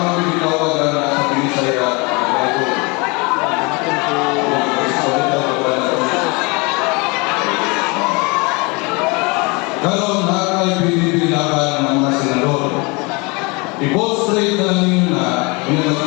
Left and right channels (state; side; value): quieter; right; 28.2 dB